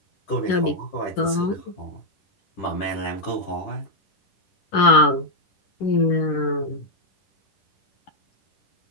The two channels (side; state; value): right; late; 11 ms